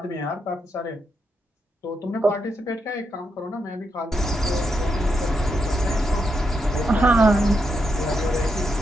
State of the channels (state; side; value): normal; both; correlation 0.82